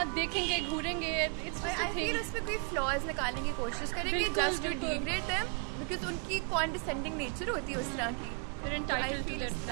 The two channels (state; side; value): quieter; left; 37.7 dB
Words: देखेंगे, घूरेंगे। आई फील उस पर कोई फ्लॉज निकालने की कोशिश करेंगे just to degrade them, because उनकी कॉन्डिसेंडिंग नेचर होती है उस तरह की। आई फील इस